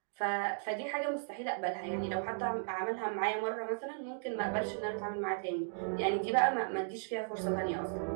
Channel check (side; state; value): left; silent; digital silence